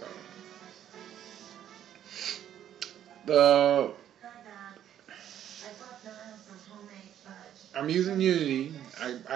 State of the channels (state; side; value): quieter; left; 10.6 dB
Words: the I'm using Unity.